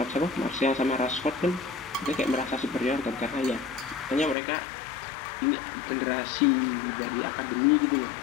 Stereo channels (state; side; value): drops out; right; at 4.4 s